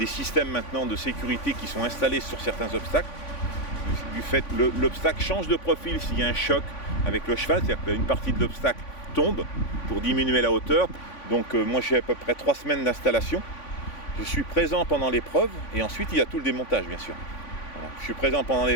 systèmes maintenant de sécurité qui sont installés sur certains obstacles. Du fait que l'obstacle change de profil s'il y a un choc avec le cheval, c'est-à-dire qu'une partie de l'obstacle tombe pour diminuer la hauteur. Donc moi j'ai à peu près 3 semaines d'installation. Je suis présent pendant l'épreuve et ensuite il y a tout le démontage bien sûr. Voilà. Je suis présent pendant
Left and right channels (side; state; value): right; late; 3.5 ms